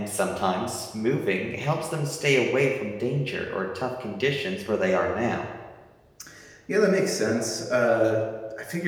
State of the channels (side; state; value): both; identical; correlation 1.00